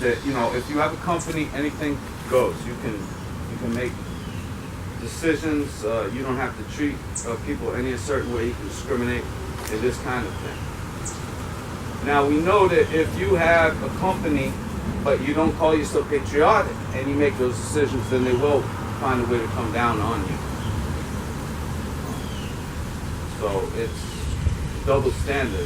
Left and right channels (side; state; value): both; identical; correlation 1.00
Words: if you have a company, anything goes. You can make decisions. You don't have to treat people any certain way. You can discriminate and this kind of thing. Now we know that if you have a company, but you don't call yourself patriotic, and you make those decisions, then they will find a way to come down on you. So it's double